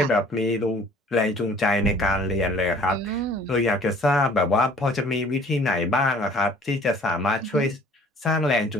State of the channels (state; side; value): normal; both; correlation 0.53